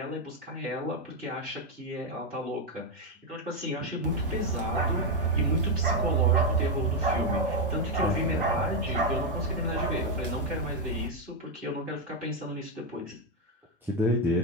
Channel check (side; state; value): both; normal; correlation 0.04